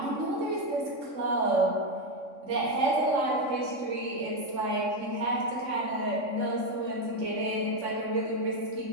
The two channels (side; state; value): left; late; 3.6 ms